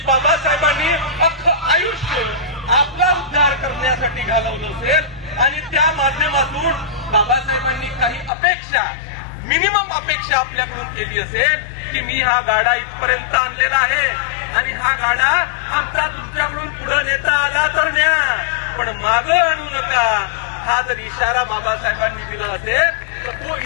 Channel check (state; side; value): drops out; right; at 8.3 s